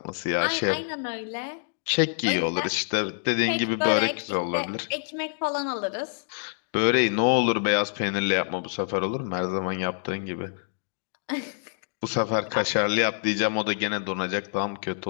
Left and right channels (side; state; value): right; silent; digital silence